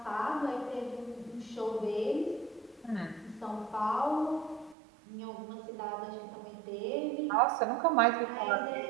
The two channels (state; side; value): drops out; left; at 4.8 s